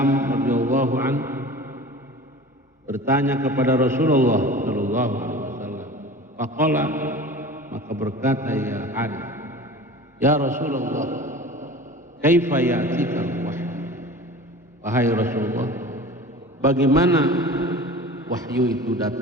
radhiyallahu anhu bertanya kepada Rasulullah sallallahu alaihi wasallam. Faqala, maka berkata ya Haris, ya Rasulullah, kaifa ya'tika al-wahyu? Wahai Rasulullah, bagaimana wahyu itu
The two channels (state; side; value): normal; both; correlation 0.38